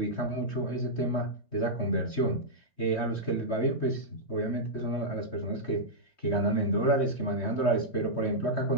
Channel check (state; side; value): late; right; 3.2 ms